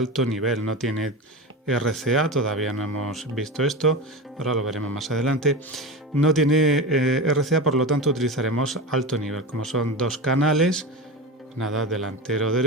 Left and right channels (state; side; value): normal; both; correlation 0.24